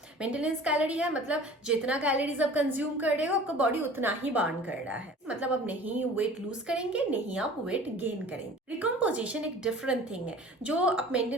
मेंटेनेंस कैलोरी है मतलब जितना कैलोरीज आप कंज्यूम कर रहे हो आपका बॉडी उतना ही बर्न कर रहा है। मतलब आप नहीं वेट लूज करेंगे, नहीं आप वेट गेन करेंगे। रिकम्पोजिशन एक डिफरेंट थिंग है जो आप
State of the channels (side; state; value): both; normal; correlation 0.44